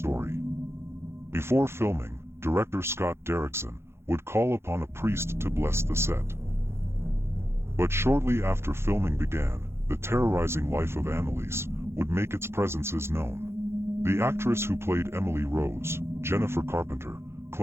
Before filming, director Scott Derrickson would call upon a priest to bless the set. But shortly after filming began, the terrorizing life of Anneliese would make its presences known. The actress who played Emily Rose, Jennifer Carpenter,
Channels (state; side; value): late; left; 0.12 ms